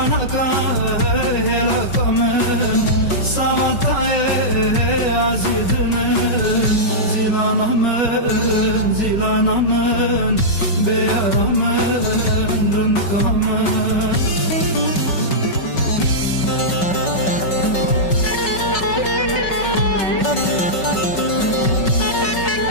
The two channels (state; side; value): late; right; 5.3 ms